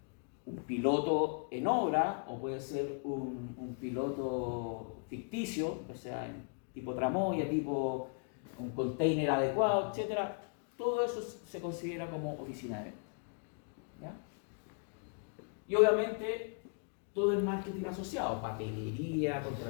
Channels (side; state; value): right; quieter; 38.6 dB